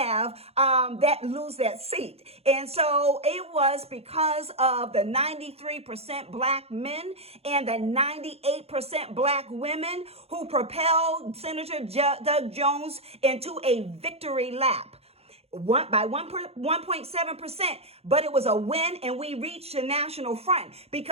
lose that seat. And so it was because of the 93% Black men and the 98% Black women who propelled Senator Doug Jones into a victory lap. By 1.7%, but it was a win, and we reached the national front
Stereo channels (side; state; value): left; late; 0.29 ms